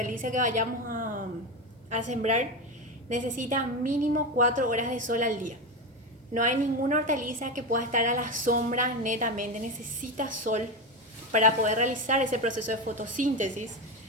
que vayamos a sembrar, necesitan mínimo 4 horas de sol al día. No hay ninguna hortaliza que pueda estar a la sombra netamente, necesita sol para poder realizar ese proceso de fotosíntesis,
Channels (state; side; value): normal; both; correlation 0.16